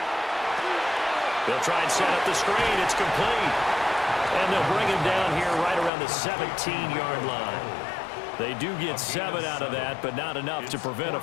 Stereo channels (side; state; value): right; drops out; at 5.9 s